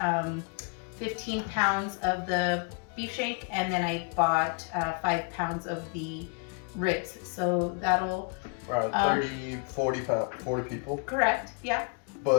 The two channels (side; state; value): right; quieter; 37.6 dB